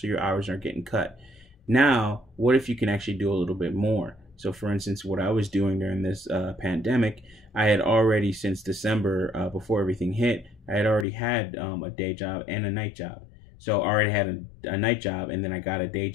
your hours aren't getting cut. Now, what if you can actually do a little bit more? So, for instance, what I was doing during this pandemic, I had already, since December, before everything hit, I had already had a day job and a night job. So I already had a night job, and then I got a day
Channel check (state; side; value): drops out; right; at 11.1 s